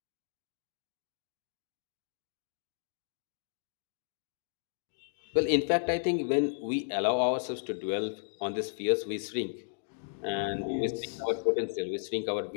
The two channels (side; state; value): right; silent; digital silence